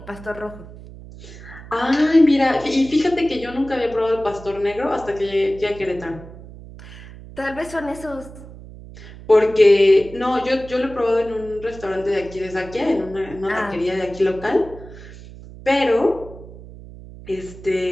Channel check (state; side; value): noise; right; hum, 16 dB below the sound